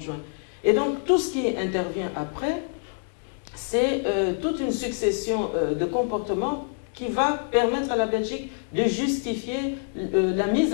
juin. Et donc tout ce qui intervient après, c'est toute une succession de comportements qui va permettre à la Belgique de justifier la mise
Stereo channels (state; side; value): silent; right; digital silence